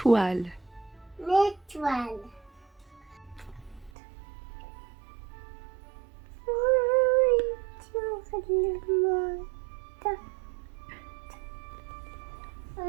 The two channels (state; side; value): drops out; left; at 3.9 s